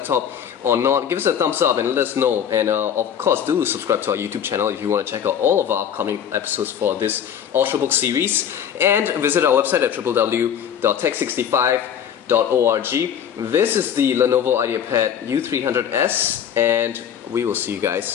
or not, give us a thumbs up and let us know. And of course, do subscribe to our YouTube channel if you want to check out all of our upcoming episodes for this Ultrabook series. And visit our website at www.tech65.org. This is the Lenovo IdeaPad U300S, and we will see you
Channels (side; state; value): right; quieter; 8.9 dB